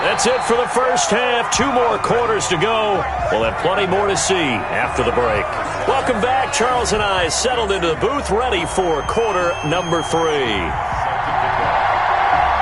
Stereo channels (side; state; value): both; identical; correlation 1.00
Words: That's it for the first half. 2 more quarters to go. We'll have plenty more to see after the break. Welcome back. Charles and I settled into the booth, ready for quarter number 3.